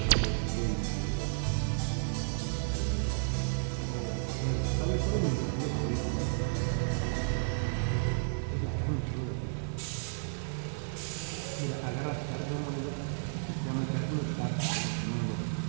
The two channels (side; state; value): left; silent; 56 dB below the other